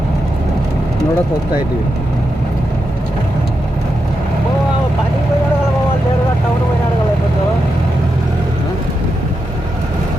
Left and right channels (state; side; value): normal; both; correlation 0.87